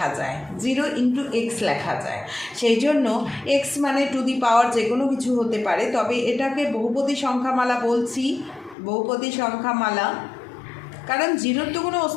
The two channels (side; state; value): right; drops out; at 8.8 s